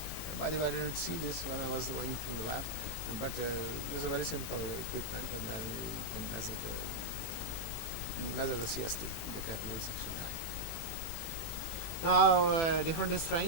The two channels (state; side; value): late; right; 18 ms